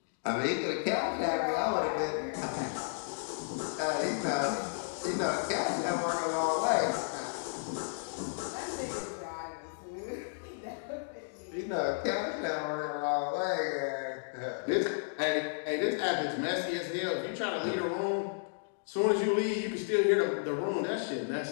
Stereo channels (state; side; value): silent; right; digital silence